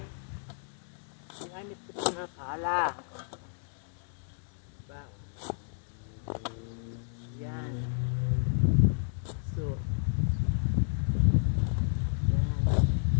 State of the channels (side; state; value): right; silent; digital silence